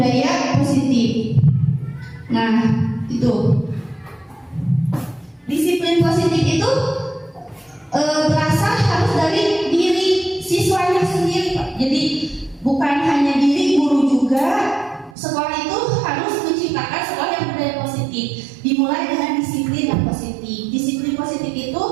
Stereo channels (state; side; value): drops out; left; at 15.2 s